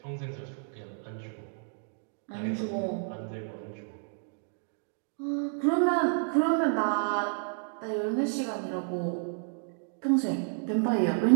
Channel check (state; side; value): silent; left; 57 dB below the other